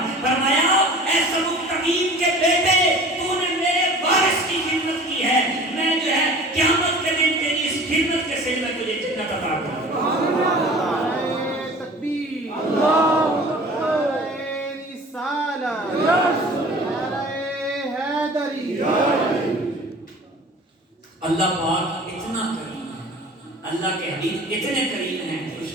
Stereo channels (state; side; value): normal; both; correlation 0.43